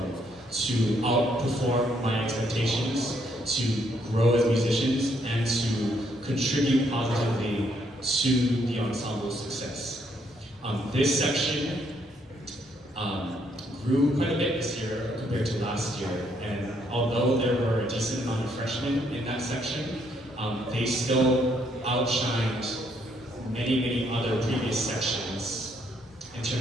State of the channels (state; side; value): normal; both; correlation 0.71